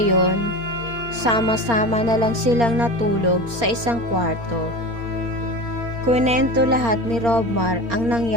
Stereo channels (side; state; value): left; late; 4.3 ms